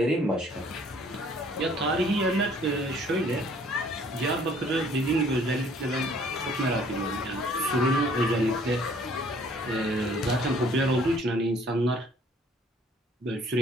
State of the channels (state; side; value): normal; both; correlation 0.58